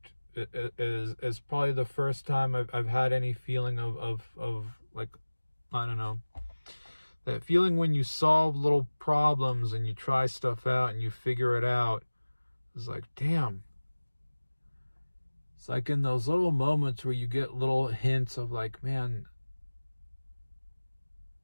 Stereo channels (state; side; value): inverted; both; correlation -1.00